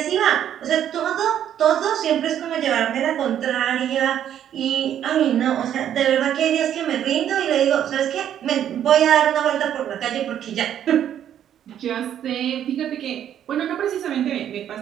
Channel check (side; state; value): left; quieter; 10.2 dB